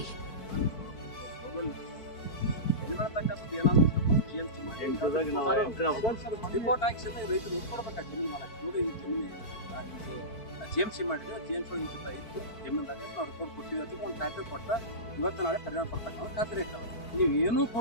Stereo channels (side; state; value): right; late; 4.5 ms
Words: ಜಿಎಂಸಿ ಮಾಡಿದ್ರೆ ಜಿಎಂಸಿ ಇತ್ತು ಜಮೀನ್ದಾಗ ನಾವು ರಿಪೋರ್ಟ್ ಕೊಟ್ಟಿವಿ ಅಂತ ಒಂದು ಖಾತೆ ಕೊಟ್ಟ ಇವತ್ತು ನಾಳೆ ಪರಿಣಾಮ ಪಡ್ತಕ್ಕ ಖಾತ್ರಿ ಇರ್ತದೆ. ನೀವು ಏನೂ